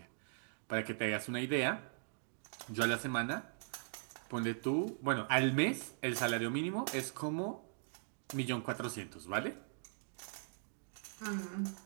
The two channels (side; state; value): left; silent; digital silence